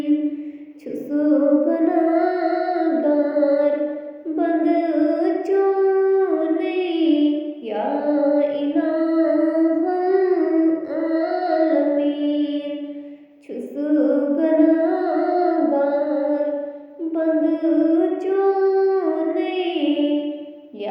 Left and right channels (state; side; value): identical; both; correlation 1.00